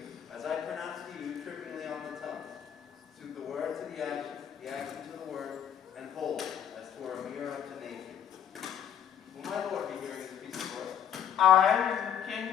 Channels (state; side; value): quieter; right; 9.2 dB